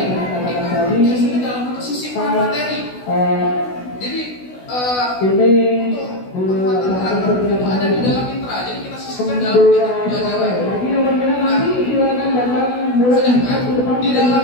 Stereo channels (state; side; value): late; right; 16 ms